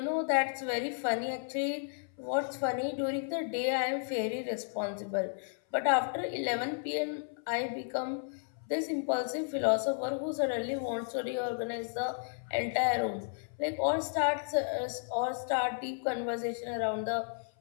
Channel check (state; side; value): silent; right; 56 dB below the other